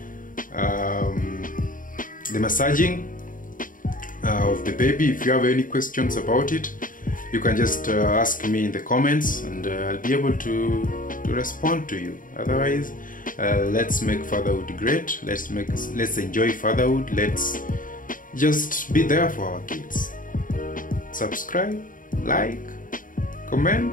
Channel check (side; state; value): right; late; 0.39 ms